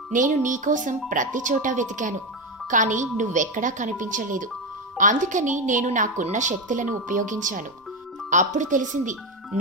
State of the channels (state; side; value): normal; both; correlation 0.12